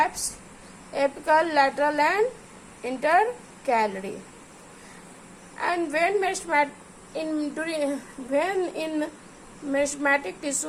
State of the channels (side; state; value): both; identical; correlation 1.00